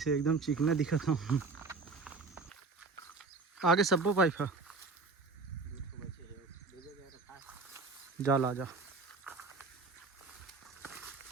एकदम चिकना दिखा था। आगे सबो पाइप है जा ला जा।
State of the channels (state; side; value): quieter; left; 3.9 dB